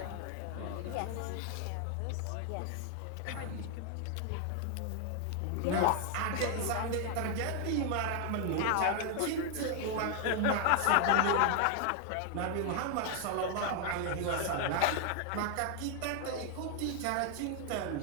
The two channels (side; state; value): both; different; correlation 0.00